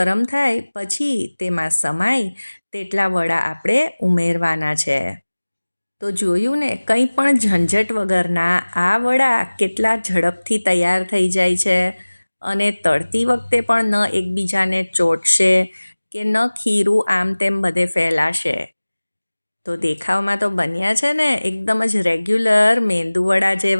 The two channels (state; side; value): inverted; both; correlation -1.00